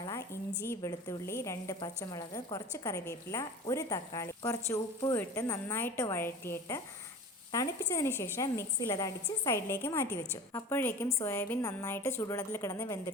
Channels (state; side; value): normal; both; correlation 0.37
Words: ഇഞ്ചി, വെളുത്തുള്ളി, 2 പച്ചമുളക്, കുറച്ച് കറിവേപ്പില, ഒരു തക്കാളി, കുറച്ച് ഉപ്പും ഇട്ട് നന്നായിട്ട് വഴറ്റിയിട്ട് തണുപ്പിച്ചതിന് ശേഷം മിക്സിയിൽ അത് അടിച്ച് സൈഡിലേക്ക് മാറ്റി വെച്ചു. അപ്പോഴേക്കും സോയാബീൻ നന്നായിട്ട് ചൂടുവെള്ളത്തിൽ കിടന്ന്